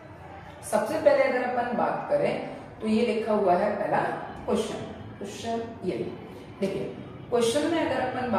सबसे पहले अगर अपन बात करें तो ये लिखा हुआ है पहला क्वेश्चन ये देखिए। क्वेश्चन में अगर अपन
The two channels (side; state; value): both; identical; correlation 1.00